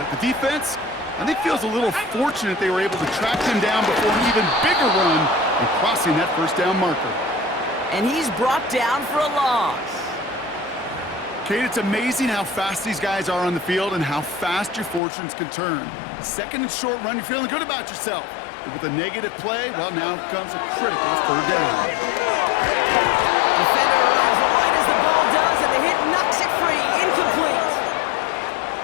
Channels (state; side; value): drops out; right; at 15.0 s